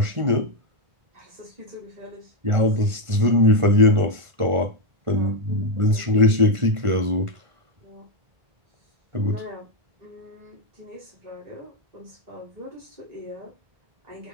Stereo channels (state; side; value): late; left; 1.5 ms